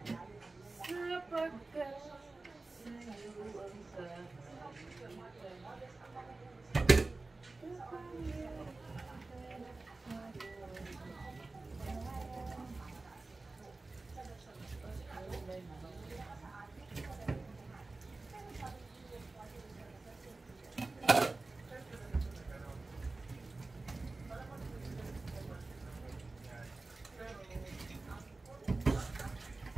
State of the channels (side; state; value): left; quieter; 3.4 dB